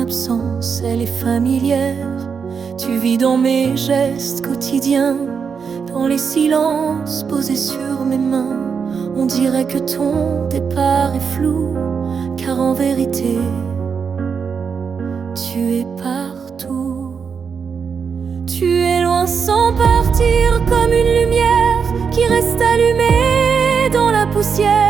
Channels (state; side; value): quieter; left; 6.2 dB